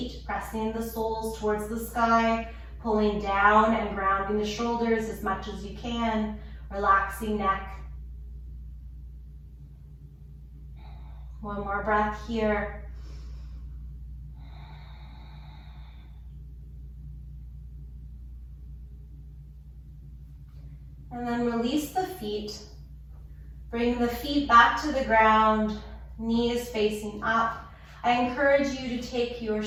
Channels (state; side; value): identical; both; correlation 1.00